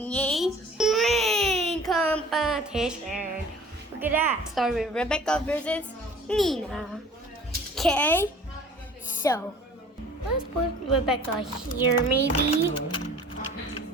a rain competition. Look at that. Start with Rebecca versus Nina. Okay, so let's put Rebecca here maybe.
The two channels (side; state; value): both; normal; correlation 0.47